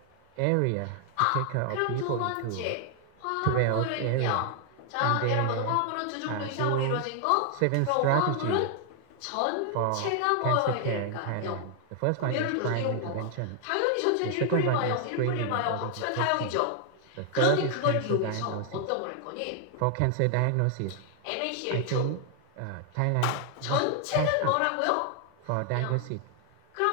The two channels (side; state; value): both; different; correlation 0.00